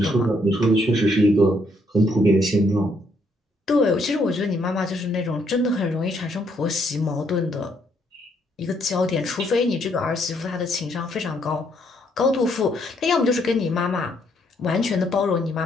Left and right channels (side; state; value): both; normal; correlation 0.71